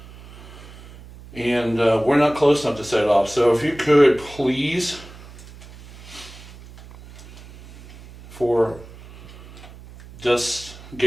And we're not close enough to set it off. So if you could please, for just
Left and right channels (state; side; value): noise; right; hum, 18 dB below the sound